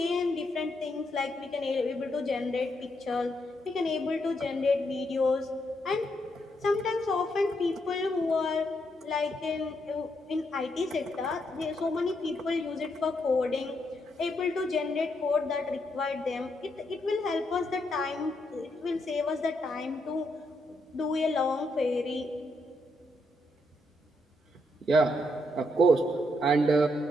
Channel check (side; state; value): both; normal; correlation 0.78